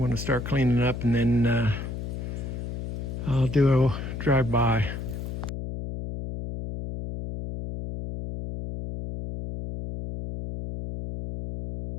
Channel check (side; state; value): left; noise; hum, 6 dB below the sound